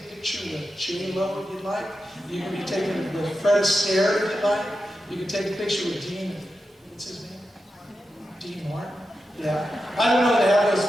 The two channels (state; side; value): normal; both; correlation 0.90